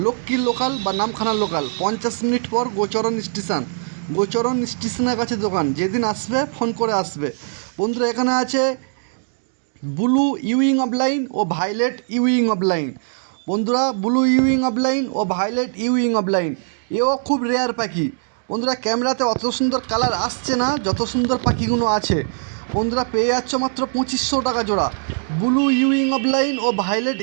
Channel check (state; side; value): silent; left; digital silence